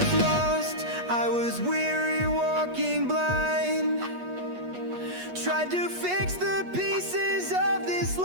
lost, I was weary, walking blind. Tried to fix the pieces of this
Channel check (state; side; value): late; left; 8.3 ms